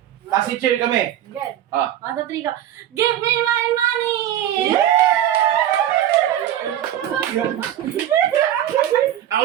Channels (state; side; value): quieter; left; 11.7 dB